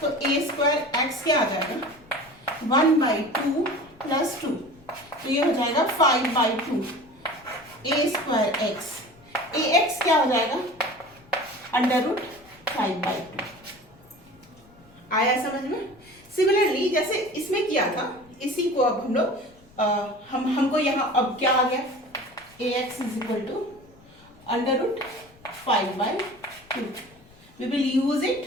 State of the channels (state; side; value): noise; left; rumble, 27 dB below the sound